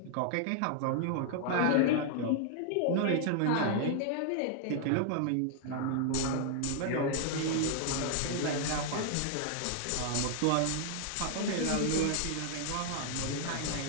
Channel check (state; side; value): different; both; correlation 0.00